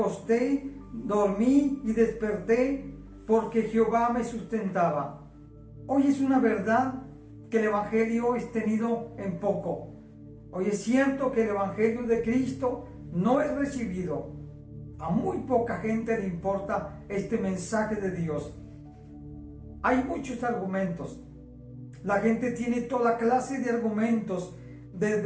dormí y desperté, porque Jehová me sustentaba. Hoy es una verdad que el Evangelio es tenido en poco. Hoy es cierto que el Evangelio de Cristo no es recibido. A muy poca gente le importa este mensaje de Dios. Hay muchos argumentos. La gente tiene toda clase de argumentos,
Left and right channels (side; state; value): both; identical; correlation 1.00